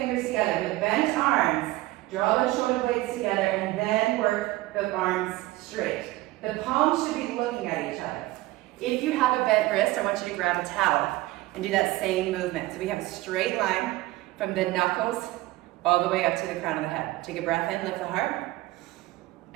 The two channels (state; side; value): quieter; left; 18.4 dB